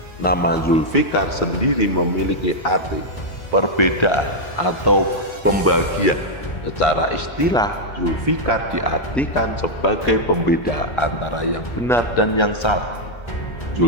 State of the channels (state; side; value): late; right; 1.3 ms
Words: Nama Zulfikar sendiri memiliki arti perbedaan atau pembagian. Secara istilah, Zulfikar diartikan sebagai pembeda antara yang benar dan yang salah.